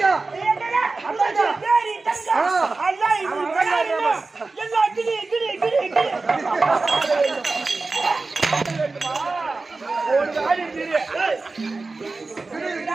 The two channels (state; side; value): quieter; left; 3.7 dB